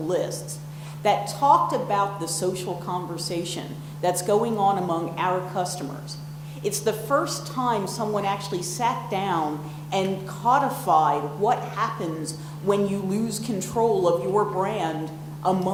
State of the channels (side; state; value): both; identical; correlation 1.00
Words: that talked about the social conversation that's going on among our customers. It's the first time someone actually sat down and codified what happens when you lose control of your brand